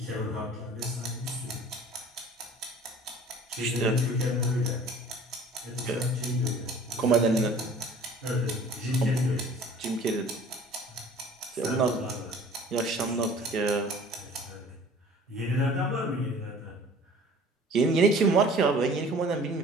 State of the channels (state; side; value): normal; both; correlation 0.48